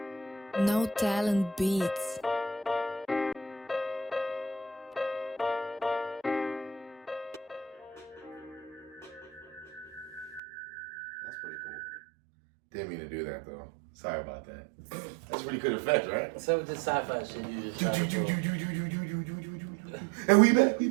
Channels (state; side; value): drops out; left; at 10.4 s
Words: No Talent Beats. That's pretty cool. Didn't mean to do that, though. Sorry about that. That's pretty good effect, right? Some of the sci-fi shit you just tried to pull. And we back.